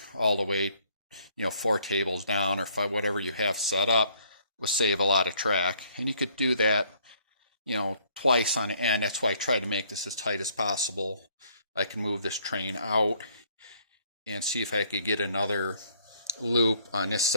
all the way, 4 tables down or 5, whatever you have set up, will save a lot of track. And you could do that, twice on end. That's why I try to make this as tight as possible. I can move this train out and see if I could get another loop on this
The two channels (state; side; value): inverted; both; correlation -0.63